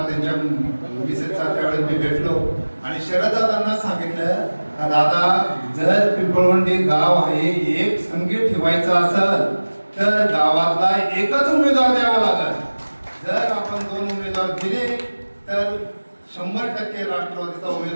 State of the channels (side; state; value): both; inverted; correlation -1.00